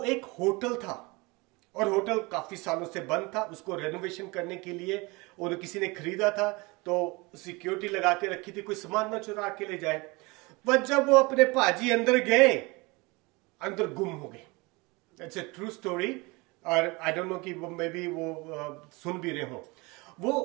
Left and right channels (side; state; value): left; quieter; 25.4 dB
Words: एक होटल था, और होटल काफी सालों से बंद था। उसको रेनोवेशन करने के लिए और किसी ने खरीदा था, तो सिक्योरिटी लगा के रखी थी, कोई सामान ना चुरा के ले जाए। पर जब वो अपने पाजी अंदर गए, अंदर गुम हो गए। इट्स ए ट्रू स्टोरी, और आई डोंट नो कि वो मे बी वो सुन भी रहे हो।